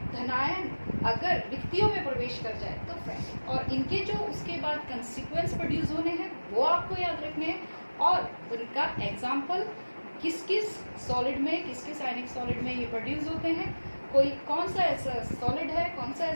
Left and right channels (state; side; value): inverted; both; correlation -1.00